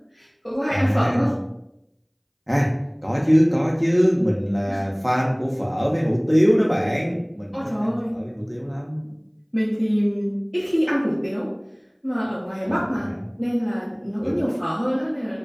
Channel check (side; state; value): both; identical; correlation 1.00